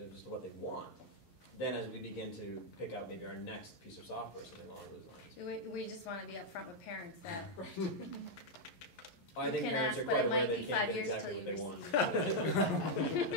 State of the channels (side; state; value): right; late; 11 ms